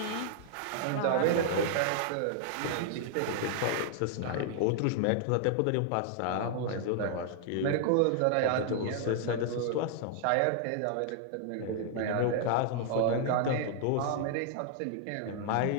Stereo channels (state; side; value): different; both; correlation 0.00